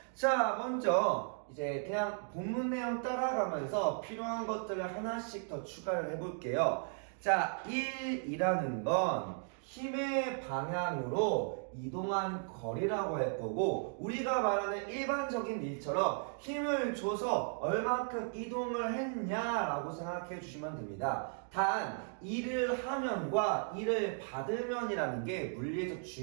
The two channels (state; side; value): silent; left; 54 dB below the other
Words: 자, 먼저 이제 그냥 본문 내용 따라가면서 필요한 것들을 하나씩 더 추가를 해볼게요. 자, 1이라는 건 힘의 방향으로 이동한 거리라고 할 거고, 우리가 말하는 일반적인 일처럼 힘을 줘서 얼만큼 이동을 했냐라고 생각해 주시면 됩니다. 단 일을 하면과 일을 받으면이라는 게 물리에서